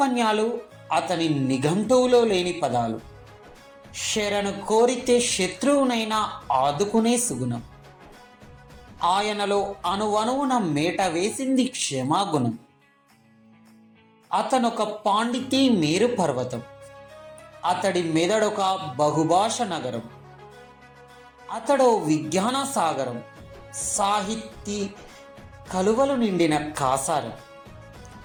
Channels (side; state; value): both; identical; correlation 1.00